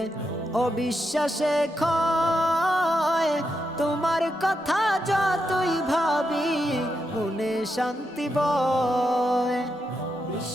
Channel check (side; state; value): both; normal; correlation 0.84